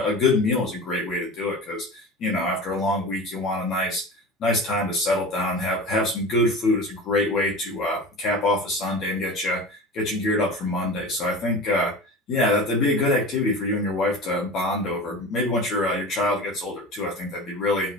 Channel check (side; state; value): both; normal; correlation 0.33